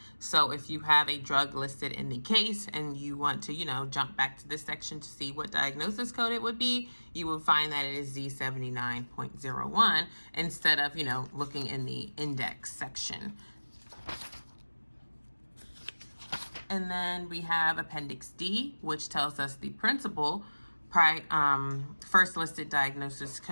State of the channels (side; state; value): both; inverted; correlation -1.00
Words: So if you have a drug listed in the case and you want to, jump back to this section to see what diagnosis code it would be, you will find that it is Z79.01 instead of, looking in the index section. And then we have Appendix D, which tells us the principal first listed diagnosis